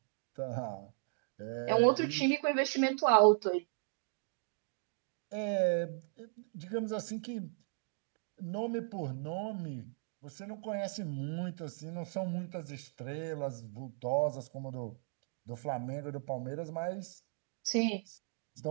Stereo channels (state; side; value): silent; left; digital silence